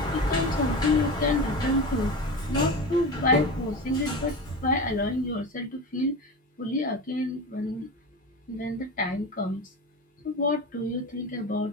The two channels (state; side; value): normal; both; correlation 0.26